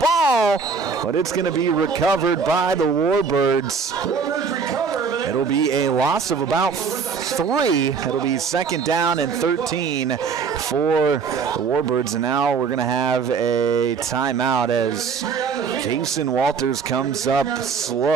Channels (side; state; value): left; quieter; 5.5 dB